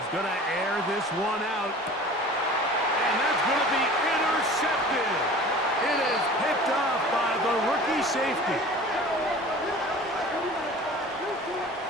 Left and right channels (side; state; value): both; normal; correlation 0.42